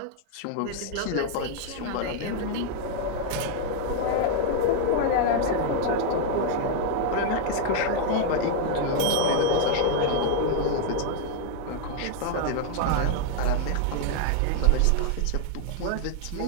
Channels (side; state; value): both; different; correlation 0.00